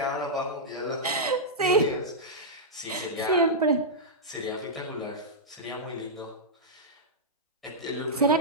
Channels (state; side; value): normal; both; correlation -0.09